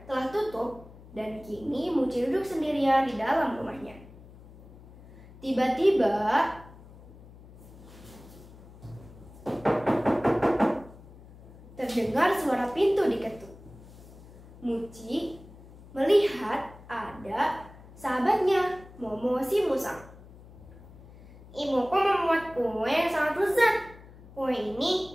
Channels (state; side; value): noise; left; hum, 20 dB below the sound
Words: telah tutup dan kini Muci duduk sendirian di dalam rumahnya. Tiba-tiba terdengar suara pintu diketuk. Muci melihat ada sahabatnya, Momo si musang. Ibuku membuat kue yang sangat lezat. Kue ini